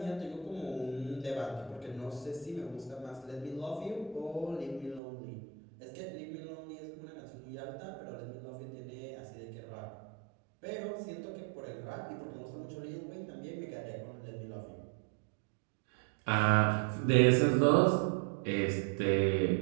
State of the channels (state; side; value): drops out; left; at 5.0 s